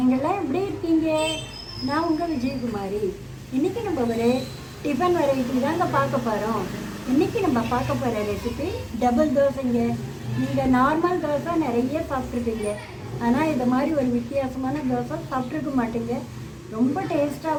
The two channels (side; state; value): both; identical; correlation 1.00